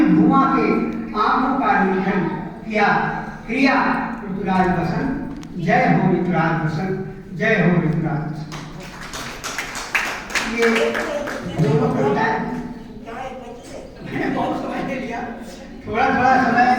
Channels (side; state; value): both; identical; correlation 1.00